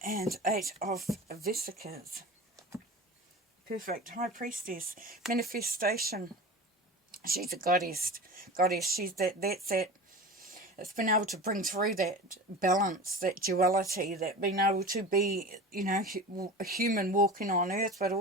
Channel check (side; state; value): both; normal; correlation 0.33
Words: And 8 of Vesicas. Perfect. High Priestess. Manifestation. She's a goddess. She's that's that. It's been able to bring through that balance, that duality, that being able to be, a human walking on earth, but